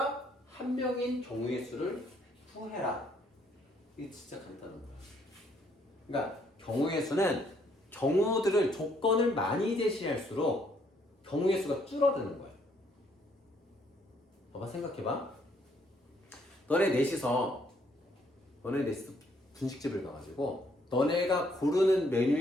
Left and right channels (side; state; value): both; normal; correlation 0.68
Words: 한 명인 경우의 수를 구해라. 이게 진짜 간단한 거야. 그러니까 경우의 수는 경우들을 조건을 많이 제시할수록 경우의 수가 줄어드는 거야. 봐봐, 생각해봐. 너네 넷이서 분식집을 가가지고 너네가 고르는